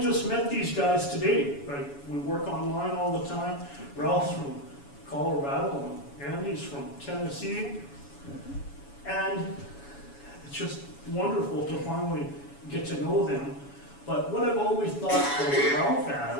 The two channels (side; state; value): right; late; 7.1 ms